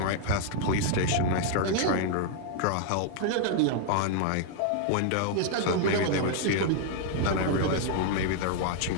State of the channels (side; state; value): both; different; correlation 0.00